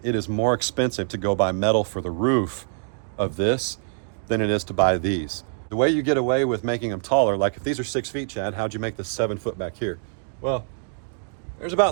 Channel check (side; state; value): left; silent; digital silence